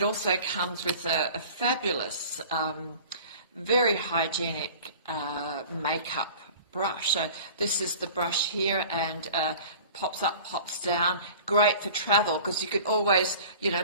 also comes with a fabulous, very hygienic makeup brush. So this is the brush here, and pops up, pops down. Great for travel, because you can always,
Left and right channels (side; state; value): both; inverted; correlation -0.43